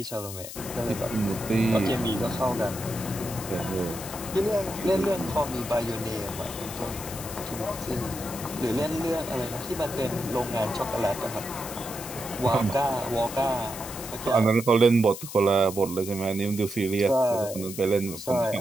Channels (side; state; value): left; noise; hiss, 10 dB below the sound